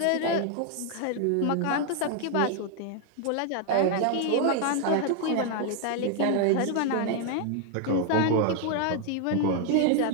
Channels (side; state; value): both; different; correlation 0.00